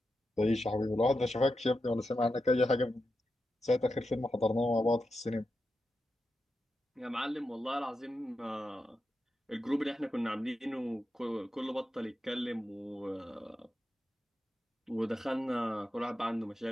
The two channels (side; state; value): both; normal; correlation 0.88